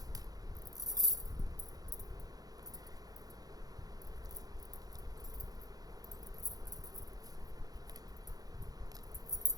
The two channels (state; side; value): late; left; 0.18 ms